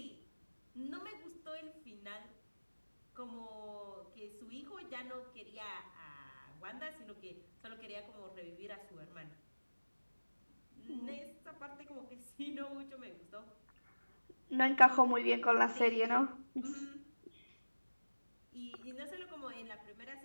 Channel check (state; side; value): inverted; both; correlation -1.00